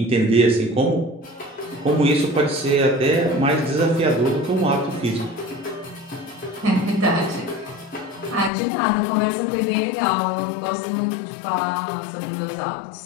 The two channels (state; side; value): drops out; right; at 8.5 s